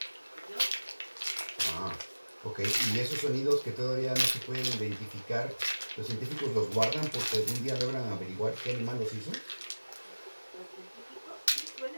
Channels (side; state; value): both; inverted; correlation -1.00